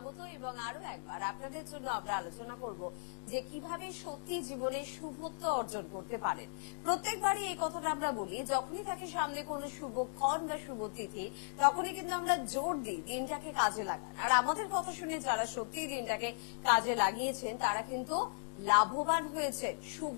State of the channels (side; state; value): right; silent; digital silence